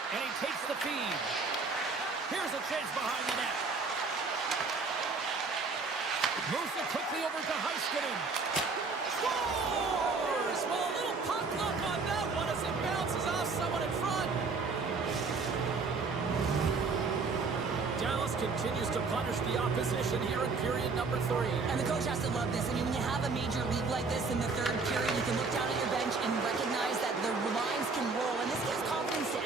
And he takes the feed. Here's a chance behind the net. Moves it quickly over to Heiskanen. Scores! Well, a little puck luck on that one as it bounces off someone in front. Dallas continues to punish the opposition here in period number 3. And the coach has to love this. I mean, when you have a major league like this in the third period, you can look down at your bench and recognize that the lines can roll. And this gives confidence to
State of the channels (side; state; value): left; quieter; 4.3 dB